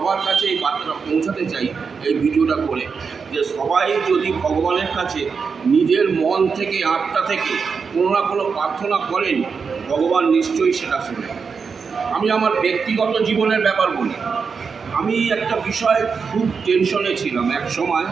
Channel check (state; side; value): quieter; left; 5.5 dB